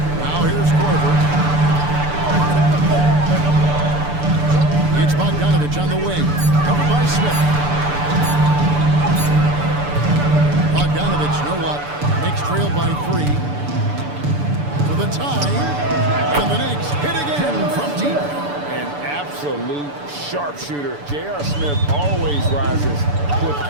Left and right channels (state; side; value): late; left; 6.9 ms